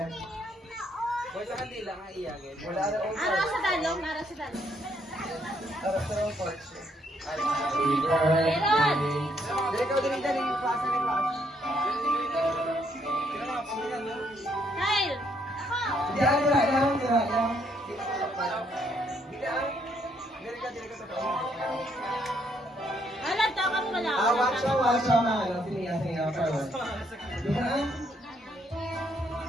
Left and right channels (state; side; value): normal; both; correlation 0.71